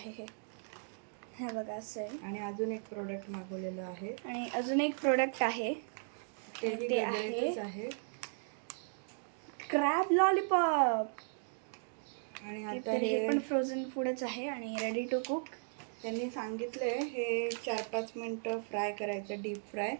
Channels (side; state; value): left; silent; digital silence